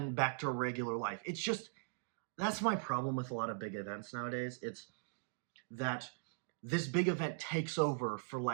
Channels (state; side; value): silent; left; digital silence